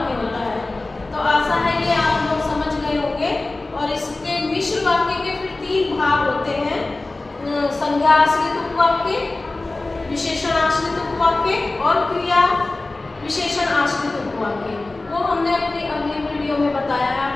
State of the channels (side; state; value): right; quieter; 3.1 dB